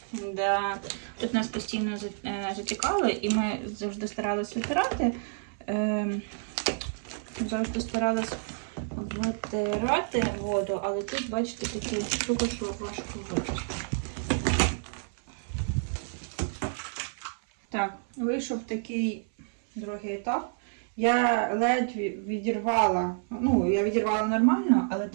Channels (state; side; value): silent; left; 58 dB below the other